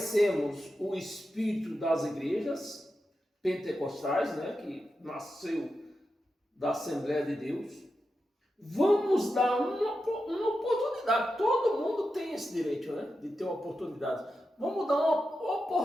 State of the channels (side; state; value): both; normal; correlation 0.89